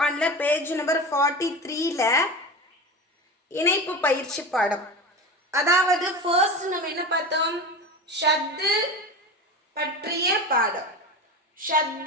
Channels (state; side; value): normal; both; correlation 0.27